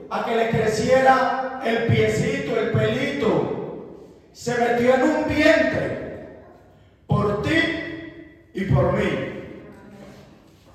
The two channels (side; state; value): both; identical; correlation 1.00